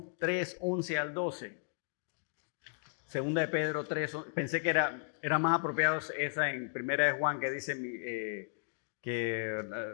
3:11 al 12. Segunda de Pedro 3, pensé que era más apropiado esa en Primera de Juan que dice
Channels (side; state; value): right; silent; digital silence